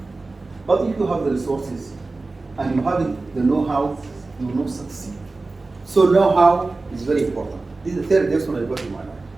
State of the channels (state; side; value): quieter; left; 3.5 dB